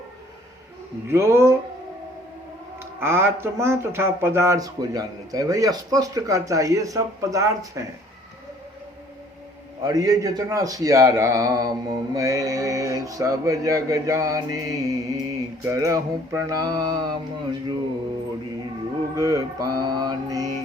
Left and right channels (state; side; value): normal; both; correlation 0.57